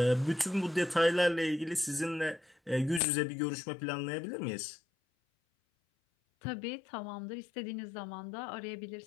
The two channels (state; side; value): drops out; right; at 3.0 s